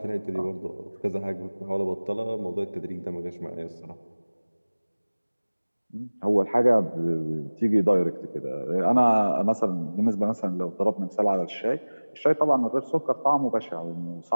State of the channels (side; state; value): both; inverted; correlation -1.00